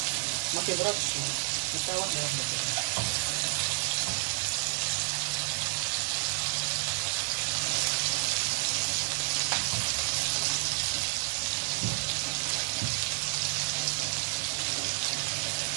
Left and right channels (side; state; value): left; silent; 56 dB below the other